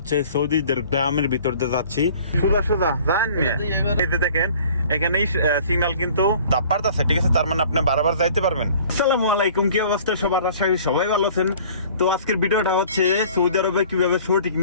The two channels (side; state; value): both; inverted; correlation -0.50